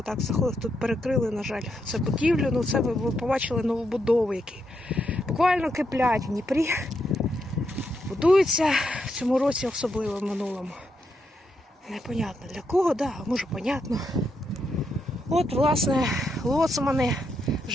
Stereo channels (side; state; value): both; normal; correlation 0.81